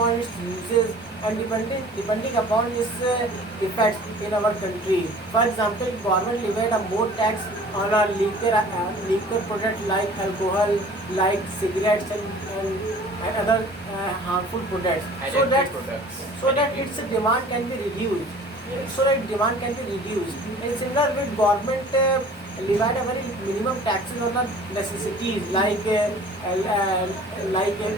its uses, and depending upon its effects in our country. For example, government levied a more tax on a liquor product like alcohol, like cigarettes, and other harmful products, so that Addictive products. its demand can be reduced. So that demand can be reduced. And similar with government levied a very minimum taxes on the necessities like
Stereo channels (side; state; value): both; normal; correlation 0.47